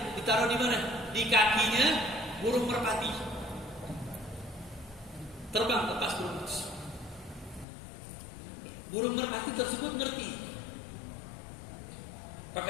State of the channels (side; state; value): right; drops out; at 7.7 s